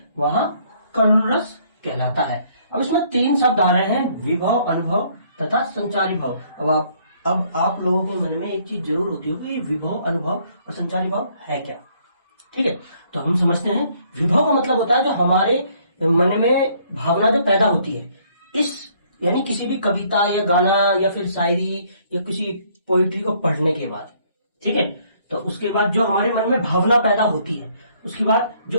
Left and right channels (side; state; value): both; inverted; correlation -0.64